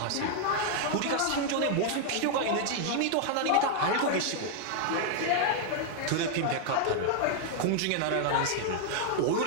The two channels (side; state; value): both; different; correlation 0.00